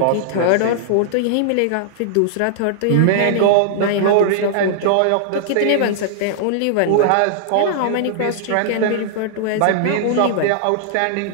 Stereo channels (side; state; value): both; different; correlation -0.01